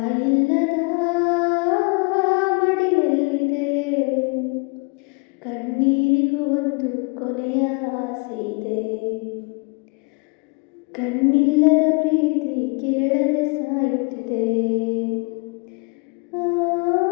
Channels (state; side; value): quieter; right; 31.0 dB